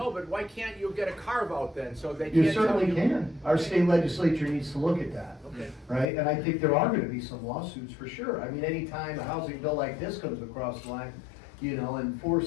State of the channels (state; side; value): drops out; right; at 6.1 s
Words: but why can't you get a carve out then, so they can't You tell certainly can. Our state legislature needs to look at that. Okay. Right? And I think there are gonna be some lawsuits for sure. I mean, anytime a housing bill like this comes across the line, you know, and